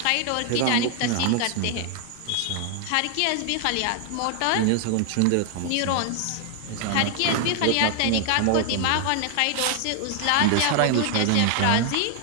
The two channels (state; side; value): different; both; correlation 0.00